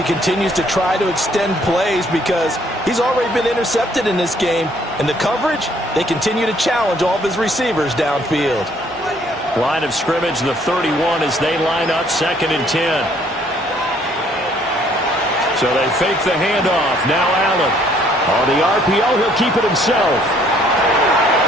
continues to try to extend plays because he's already been intercepted in this game. And the coverage, they continue to challenge all of his receivers downfield. Line of scrimmage, the 31 as they line up 2nd and 10. So they fake the handoff. Now Allen. On the RPO, he'll keep it himself.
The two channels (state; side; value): normal; both; correlation 0.63